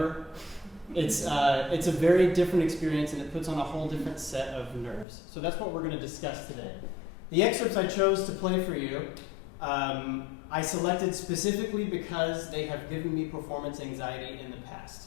It's a very different experience, and it puts on a whole different set of nerves. So that's what we're going to discuss today. The excerpts I chose to play for you, I selected specifically because they have given me performance anxiety in the past.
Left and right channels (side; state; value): right; drops out; at 5.1 s